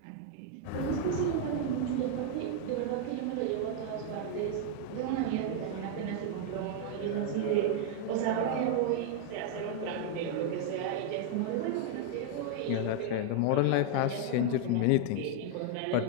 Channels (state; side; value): different; both; correlation 0.00